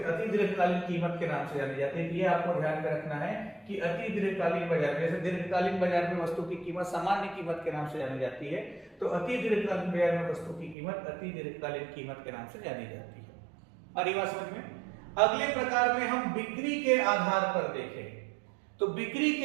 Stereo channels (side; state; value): left; drops out; at 10.8 s